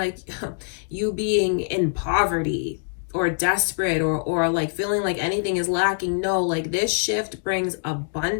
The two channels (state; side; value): silent; right; digital silence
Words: you being in poverty or desperate or like feeling like anything is lacking. No, like this shift brings